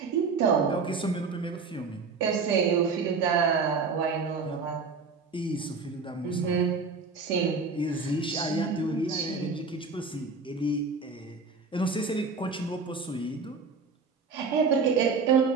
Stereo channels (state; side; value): quieter; left; 4.7 dB